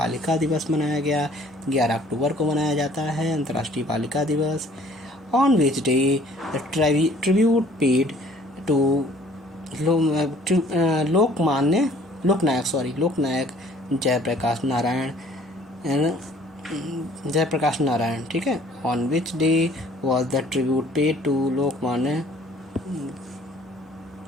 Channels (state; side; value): normal; both; correlation 0.56